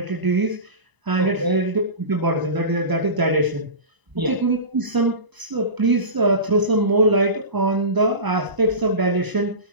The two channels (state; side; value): late; left; 1.0 ms